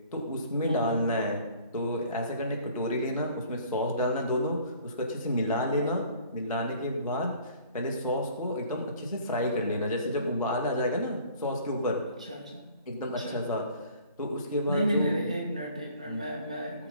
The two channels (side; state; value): both; inverted; correlation -0.53